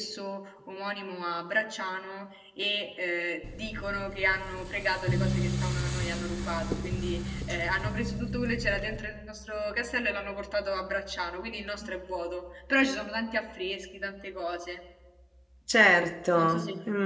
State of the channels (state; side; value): identical; both; correlation 1.00